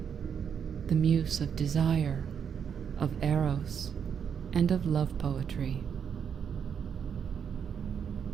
the Muse of desire, of eros, and of love poetry.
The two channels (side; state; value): left; quieter; 7.5 dB